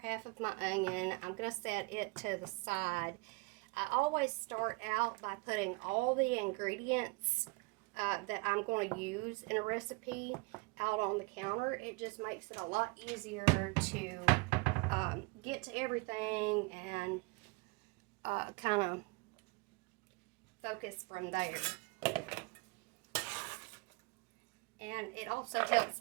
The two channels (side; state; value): left; quieter; 27.8 dB